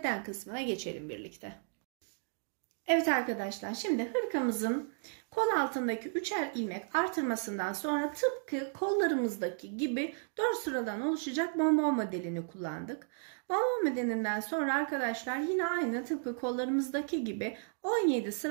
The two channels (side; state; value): left; silent; 55 dB below the other